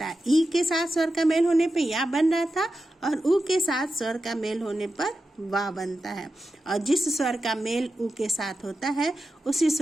है। ई के साथ स्वर का मेल होने पर या बन रहा था और उ के साथ स्वर का मेल होने पर वा बनता है और जिस स्वर का मेल उ के साथ होता है उसी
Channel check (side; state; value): both; normal; correlation 0.91